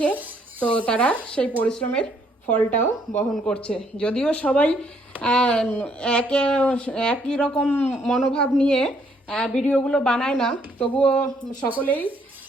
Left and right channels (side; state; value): both; normal; correlation 0.68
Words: তো তারা সেই পরিশ্রমের ফলটাও বহন করছে। যদিও সবাই একই রকম মনোভাব নিয়ে ভিডিওগুলো বানায় না, তবুও সকলেই